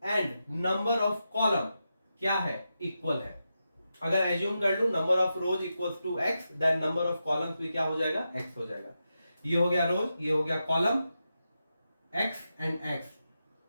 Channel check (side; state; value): both; inverted; correlation -0.88